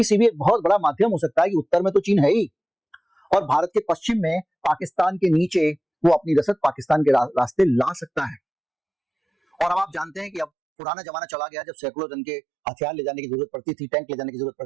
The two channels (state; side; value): drops out; left; at 10.5 s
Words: एक बहुत बड़ा माध्यम हो सकता है कि उत्तर में तो चीन है ही, और भारत के पश्चिम में पाकिस्तान के नीचे वो अपनी रसद पाकिस्तान के रास्ते ला सकता है। और अब आप जानते हैं कि अब पुराना जमाना चला गया, जब सैकड़ों टन के हथियार ले जाने की जरूरत पड़ती थी, टैंक ले जाने की जरूरत